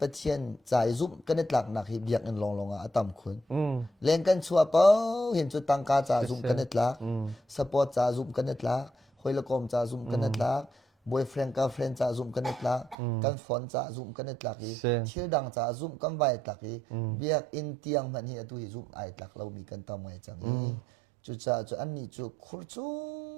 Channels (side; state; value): left; drops out; at 13.0 s